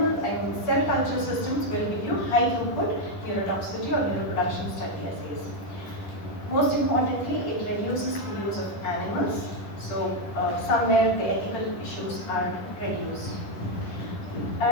and cell culture systems will give you high throughput neurotoxicity or neuroproduction study assays. Most importantly, it reduces the use of animals. So somewhere the ethical issues are reduced.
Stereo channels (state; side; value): late; right; 10 ms